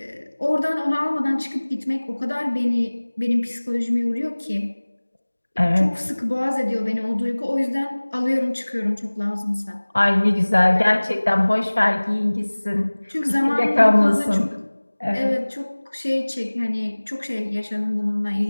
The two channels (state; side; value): inverted; both; correlation -1.00